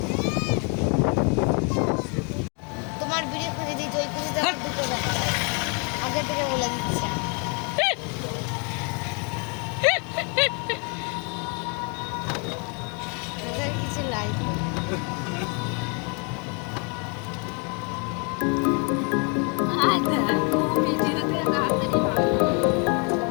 তোমার ভিডিও খুঁজে দিই, ওই খুঁজে দেখো দুটো দেখা আগে থেকে বলে দিচ্ছি। ওদের কিছু লাইক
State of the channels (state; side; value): quieter; right; 35.1 dB